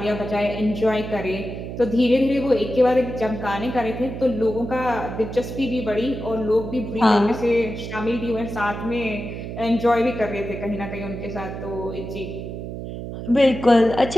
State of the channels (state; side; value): noise; right; hum, 8 dB below the sound